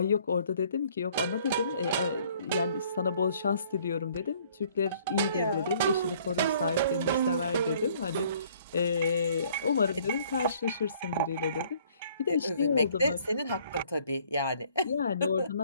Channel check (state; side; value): inverted; both; correlation -0.60